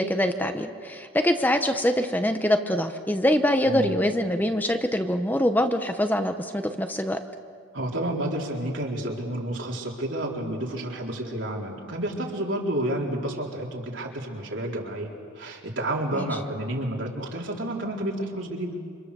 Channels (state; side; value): normal; both; correlation 0.65